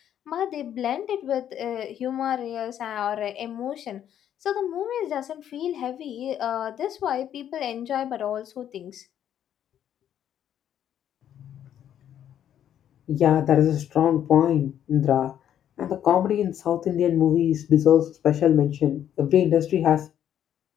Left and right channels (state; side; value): quieter; right; 10.2 dB